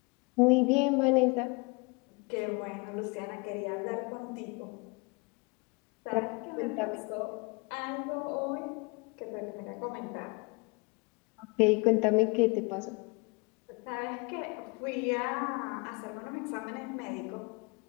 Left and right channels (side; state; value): right; quieter; 29.0 dB